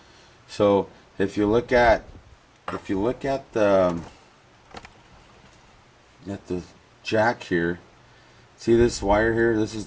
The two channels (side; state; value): both; identical; correlation 1.00